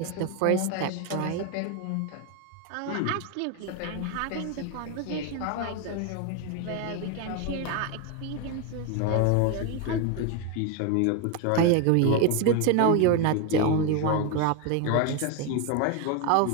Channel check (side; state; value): both; different; correlation 0.02